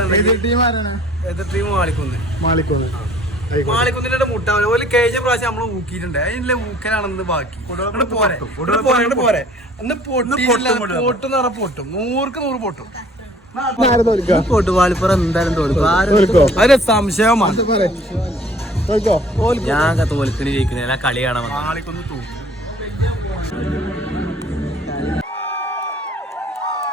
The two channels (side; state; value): both; normal; correlation 0.54